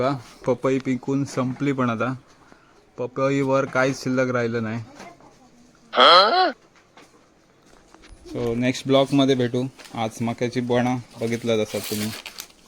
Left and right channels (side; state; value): both; identical; correlation 1.00